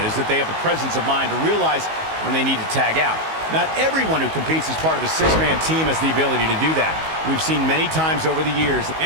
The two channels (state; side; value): late; left; 19 ms